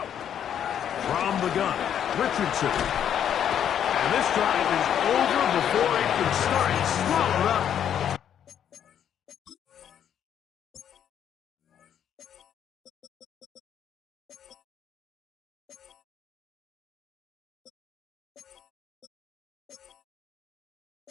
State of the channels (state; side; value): quieter; right; 9.3 dB